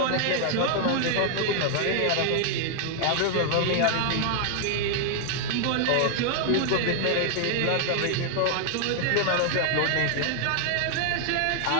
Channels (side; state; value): both; different; correlation 0.00